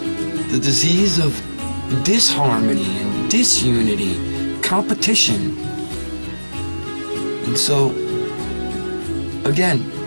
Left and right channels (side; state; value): both; inverted; correlation -1.00